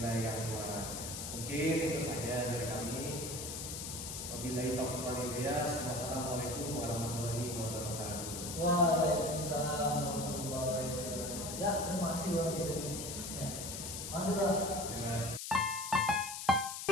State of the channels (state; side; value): noise; left; hiss, 6 dB below the sound